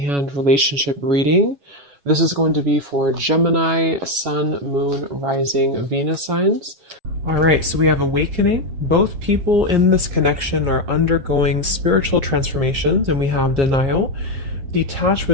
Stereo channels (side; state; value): left; late; 7.4 ms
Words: relationship reading. This is going to be for Gemini, Sun, Moon, Rising, Venus signs. All right, so we have awakening. Both people in this connection are undergoing spiritual transformations, and we have denial. Detach